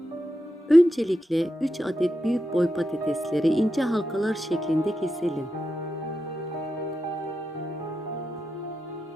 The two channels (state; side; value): normal; both; correlation 0.88